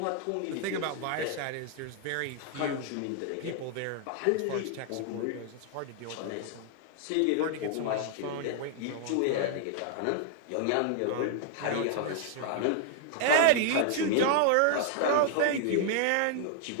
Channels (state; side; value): different; both; correlation 0.00